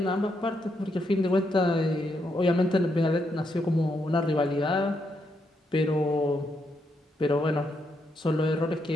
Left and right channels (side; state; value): both; normal; correlation 0.79